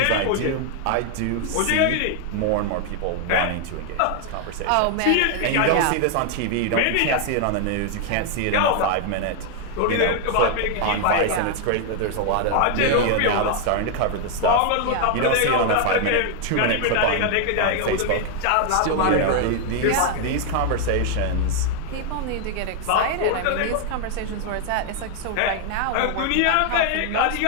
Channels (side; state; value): both; different; correlation 0.00